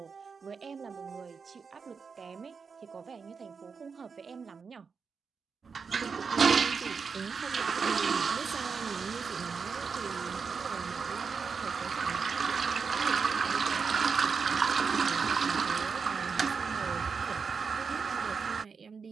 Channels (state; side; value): quieter; left; 5.5 dB